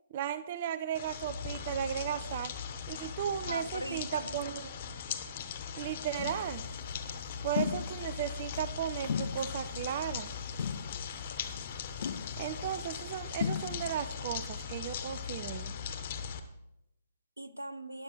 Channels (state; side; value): inverted; both; correlation -0.52